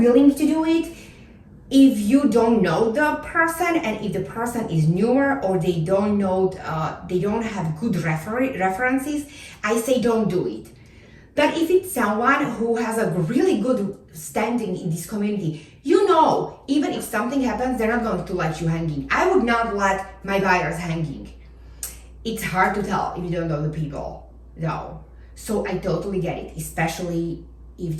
to do it? If you don't know the person and if the person is newer or they don't know, they don't have good references, I say don't do it. But if it's someone who has a really good standing in this community, you know, even if something happens, they're not going to let you hanging. I would not let my buyers hanging. It's hard to tell if you don't know the people, though. So I totally get it, especially if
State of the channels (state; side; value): identical; both; correlation 1.00